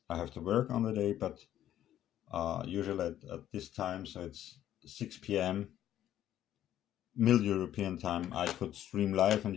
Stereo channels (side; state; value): right; quieter; 11.8 dB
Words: I have to work on the day, but usually at this time, so it's 6 p.m. Middle European time, I could stream live and